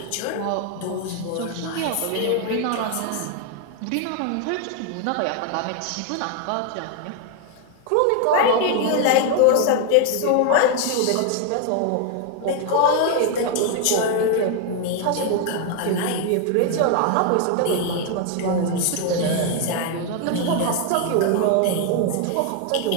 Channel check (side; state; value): both; different; correlation 0.00